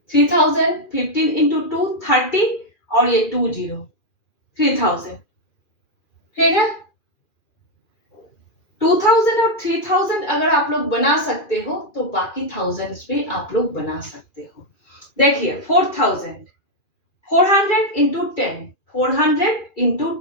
3000, 15 इंटू 2 30 और ये 20 3000। ठीक है, 2000 और 3000 अगर आप लोग बना सकते हो तो बाकी थाउजेंड्स भी आप लोग बना सकते हो। देखिए 4000, 400 इंटू 10, 400 इंटू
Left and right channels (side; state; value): right; late; 2.4 ms